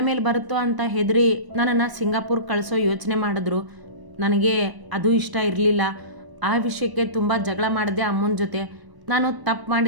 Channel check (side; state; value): left; late; 1.1 ms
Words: ಮೇಲೆ ಬರುತ್ತೋ ಅಂತ ಹೆದರಿ ನನ್ನನ್ನು ಸಿಂಗಾಪುರ್ ಕಳಿಸೋ ಯೋಚನೆ ಮಾಡಿದ್ರು. ನನಗೆ ಅದು ಇಷ್ಟ ಇರಲಿಲ್ಲ. ಆ ವಿಷಯಕ್ಕೆ ತುಂಬ ಜಗಳ ಮಾಡಿದೆ ಅಮ್ಮನ ಜೊತೆ. ನಾನು ತಪ್ಪು